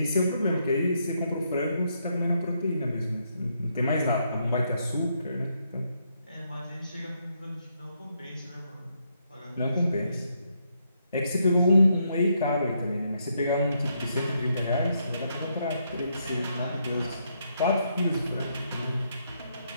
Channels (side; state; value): both; inverted; correlation -0.77